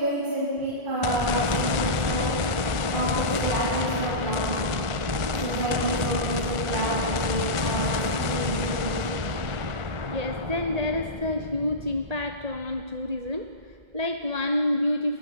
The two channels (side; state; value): left; late; 1.5 ms